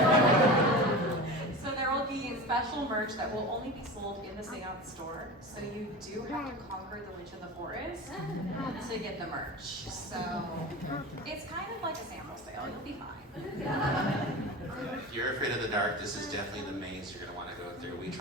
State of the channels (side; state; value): both; normal; correlation 0.30